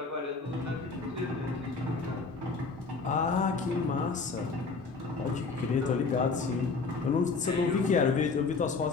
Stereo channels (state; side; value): quieter; right; 4.3 dB